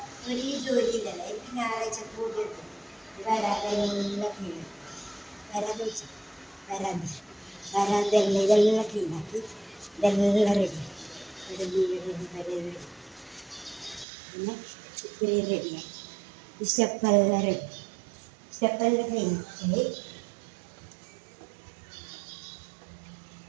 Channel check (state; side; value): drops out; left; at 14.1 s